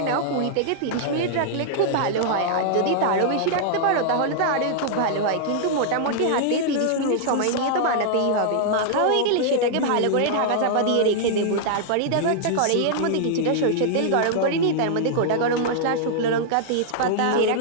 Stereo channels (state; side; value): different; both; correlation -0.01